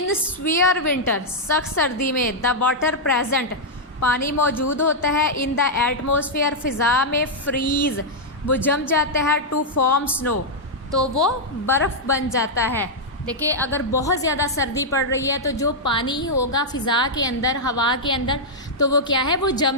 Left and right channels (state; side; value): normal; both; correlation -0.05